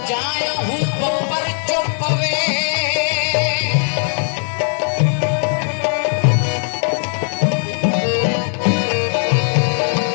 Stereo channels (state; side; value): silent; right; digital silence